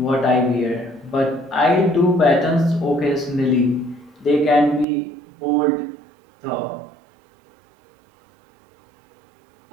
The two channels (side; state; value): left; drops out; at 4.9 s